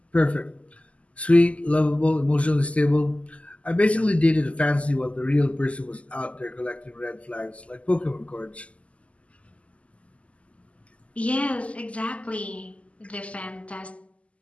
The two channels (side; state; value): right; late; 0.063 ms